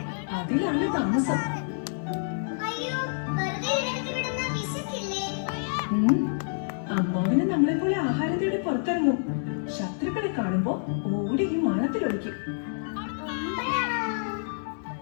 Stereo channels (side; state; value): right; silent; digital silence